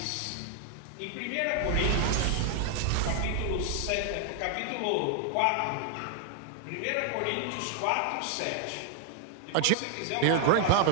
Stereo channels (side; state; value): both; different; correlation 0.00